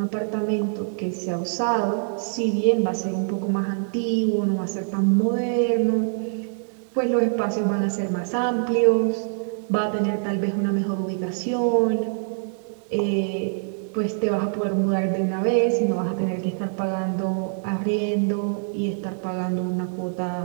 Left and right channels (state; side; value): silent; left; digital silence